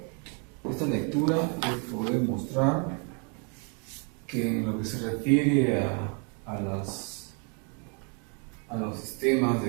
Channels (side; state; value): left; quieter; 37.1 dB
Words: de esta lectura es poder mostrar que en lo que se refiere a los sistemas